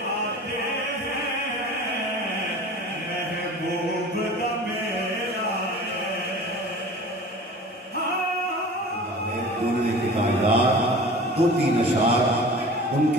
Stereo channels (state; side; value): normal; both; correlation 0.40